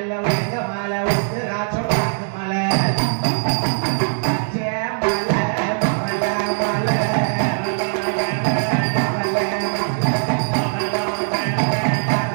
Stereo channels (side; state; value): left; silent; 65 dB below the other